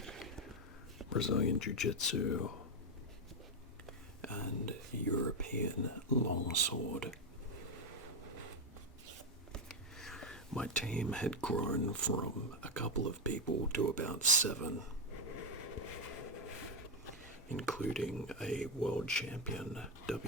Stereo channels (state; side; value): normal; both; correlation 0.05